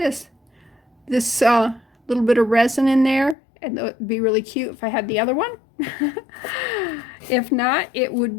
This little bit of resin in there, and it would be really cute if I had the other one. If not, it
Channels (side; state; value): right; drops out; at 3.4 s